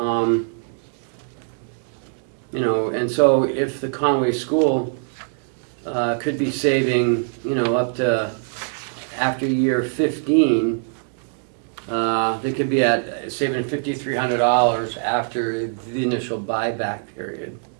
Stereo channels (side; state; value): left; silent; digital silence